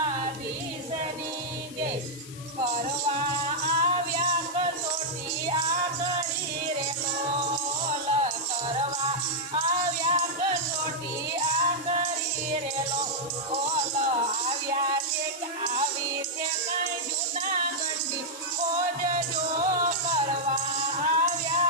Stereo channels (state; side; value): noise; left; hiss, 16 dB below the sound